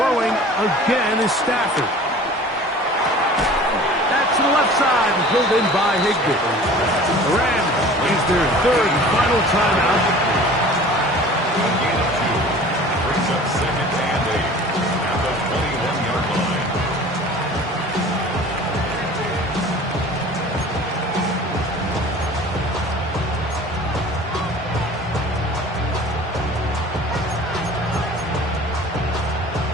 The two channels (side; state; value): both; normal; correlation 0.44